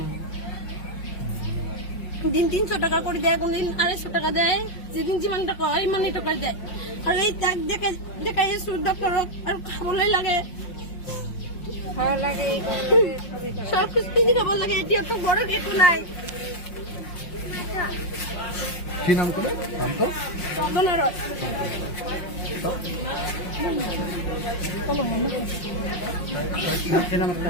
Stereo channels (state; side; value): late; right; 5.6 ms